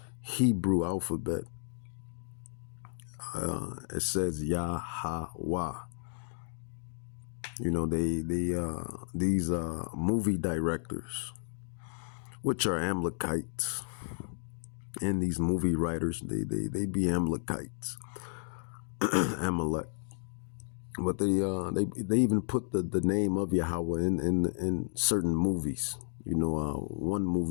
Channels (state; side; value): silent; right; digital silence